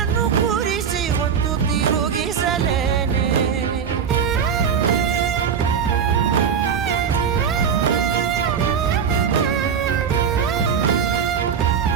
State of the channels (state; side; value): quieter; left; 7.1 dB